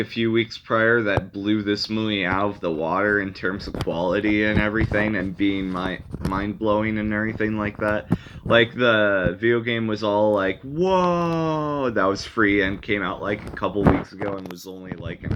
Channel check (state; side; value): identical; both; correlation 1.00